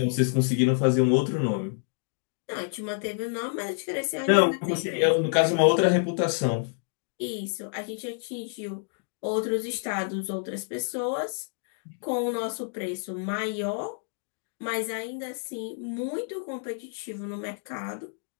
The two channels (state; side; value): silent; right; 59 dB below the other